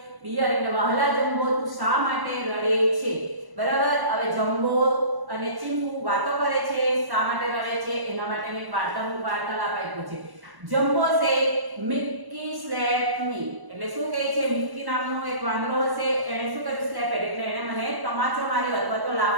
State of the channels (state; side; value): late; left; 1.1 ms